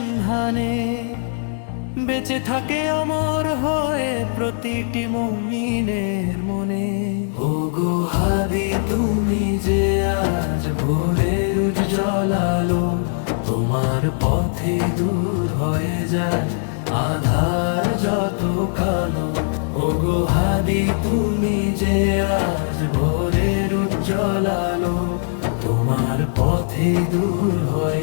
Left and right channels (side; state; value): right; silent; digital silence